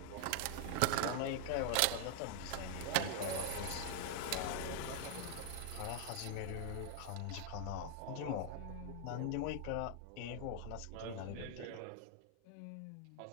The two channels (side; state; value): both; different; correlation 0.00